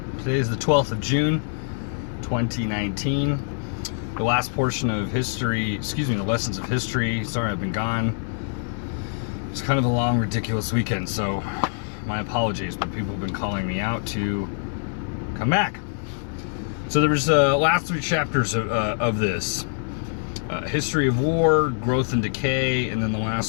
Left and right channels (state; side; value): silent; right; digital silence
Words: Today is the 12th of June, 2019. The last portion of history, the lessons of history. Sorry, I've been gone. It's kind of a long, ridiculous weekend, so my apologies, but people have been calling me out to come back. So there was last three chapters of this. History of war, growth and decay, and then the